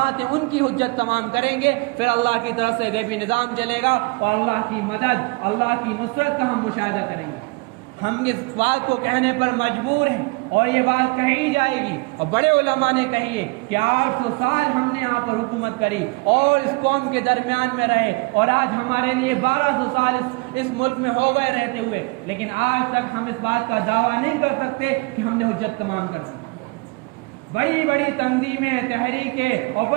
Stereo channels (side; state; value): left; quieter; 27.2 dB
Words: ہیں ان کی حجت تمام کریں گے، پھر اللہ کی طرف سے غیبی نظام چلے گا اور اللہ کی مدد، اللہ کی نصرت کا ہم مشاہدہ کریں گے۔ ہم اس بات کو کہنے پر مجبور ہیں اور یہ بات کہی جائے گی، اور بڑے علماء نے کہی ہے کہ 800 سال ہم نے یہاں پر حکومت کری اور اس قوم کے درمیان میں رہے، اور آج ہمارے لیے 1200 سال اس ملک میں ہو گئے رہتے ہوئے، لیکن آج تک ہم اس بات کا دعویٰ نہیں کر سکتے کہ ہم نے حجت تمام کر دی۔ بڑی بڑی تنظیمیں، تحریکیں اور